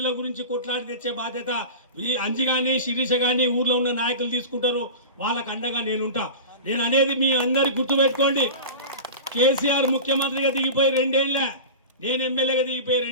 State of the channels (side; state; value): both; inverted; correlation -0.30